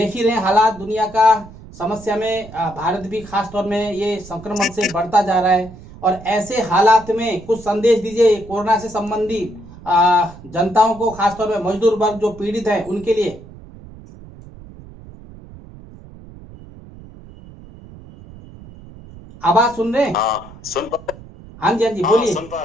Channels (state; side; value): noise; right; rumble, 18 dB below the sound